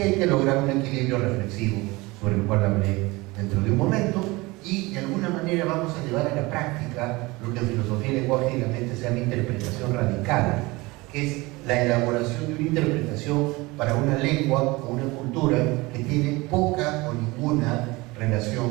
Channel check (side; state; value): left; quieter; 22.7 dB